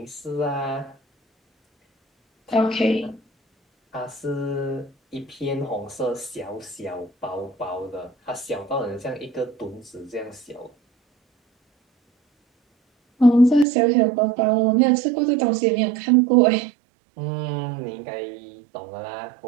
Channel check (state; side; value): drops out; left; at 13.7 s